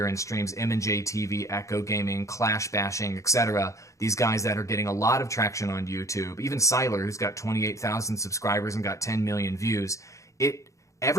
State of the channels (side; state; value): right; late; 0.15 ms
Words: in streams, M&J TV, Echo Gaming, Clash Bashing, etc. These guys that are getting a lot of traction on YouTube. Even Siler, who's got 28,000 subscribers and got 10 million views.